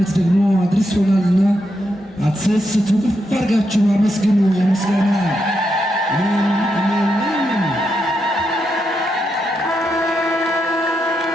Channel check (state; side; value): normal; both; correlation 0.83